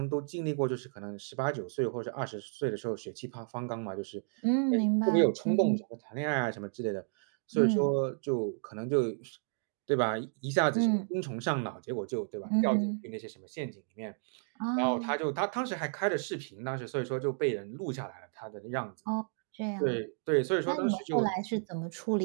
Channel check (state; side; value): silent; left; digital silence